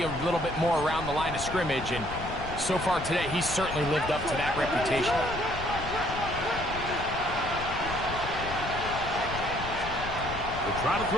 a little bit more around the line of scrimmage, and so far today, he's certainly lived up to that reputation. They'll try to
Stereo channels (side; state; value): left; noise; rumble, 9 dB below the sound